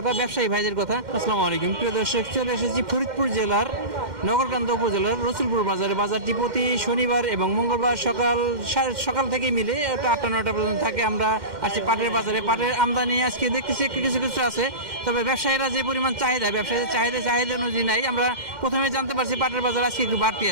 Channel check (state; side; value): late; left; 2.1 ms